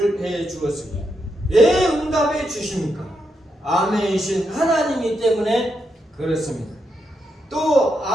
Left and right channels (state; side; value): normal; both; correlation 0.82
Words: 해 주었습니다. 왜 응답해 주십니까? 아멘이신 하나님이기 때문에 그렇습니다. 또